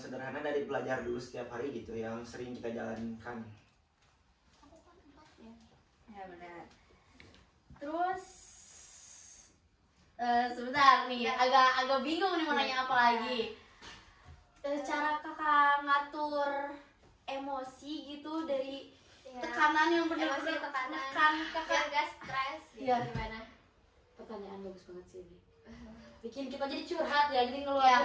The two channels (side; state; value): both; identical; correlation 1.00